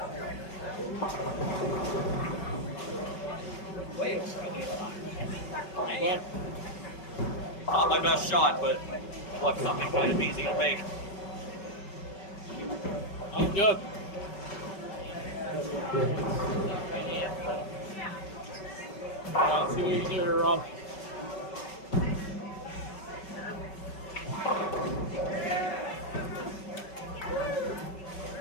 Not my best shot, but left something kind of easy to make. I'm good. See what you can do here, Rob.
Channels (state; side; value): late; right; 5.3 ms